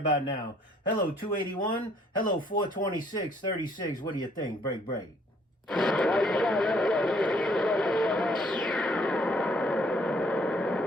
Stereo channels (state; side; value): normal; both; correlation 0.63